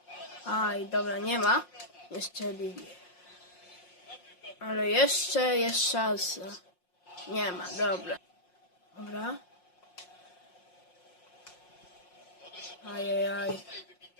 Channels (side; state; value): right; late; 5.6 ms